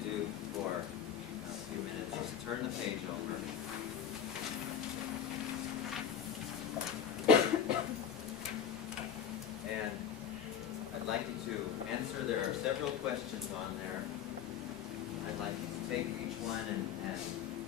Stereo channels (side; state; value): right; quieter; 8.4 dB